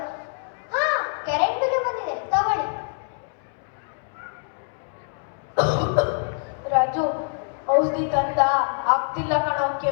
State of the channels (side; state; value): right; silent; 62 dB below the other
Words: ಕರೆಂಟ್ ಬಿಲ್ ಬಂದಿದೆ, ತಗೊಳ್ಳಿ. ರಾಜು, ಔಷಧಿ ತಂದ? ಆಗ್ತಿಲ್ಲ ಕಣೋ,